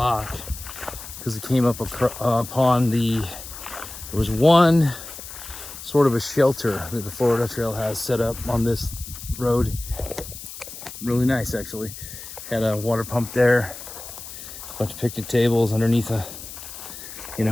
because it came up upon there was one sort of a shelter that the Florida Trail has set up on this road. Really nice, actually. Had a water pump there, a bunch of picnic tables underneath a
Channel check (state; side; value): noise; left; hiss, 12 dB below the sound